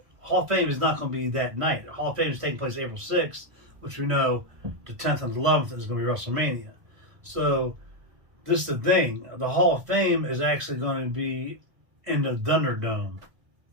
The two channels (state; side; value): late; left; 1.5 ms